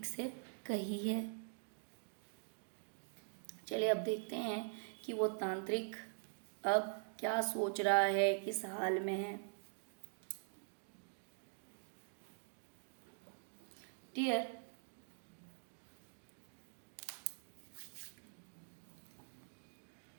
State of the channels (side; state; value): left; silent; digital silence